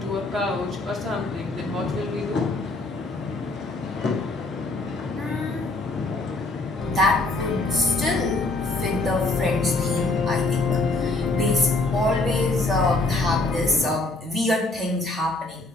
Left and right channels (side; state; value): right; quieter; 3.0 dB